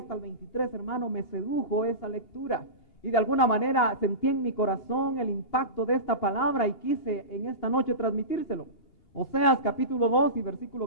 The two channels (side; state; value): right; late; 2.8 ms